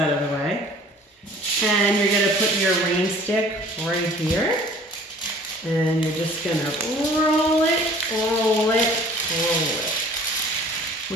of the way, and you're going to put your rain stick right here, and you're just going to roll it, roll it, roll it,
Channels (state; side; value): normal; both; correlation 0.51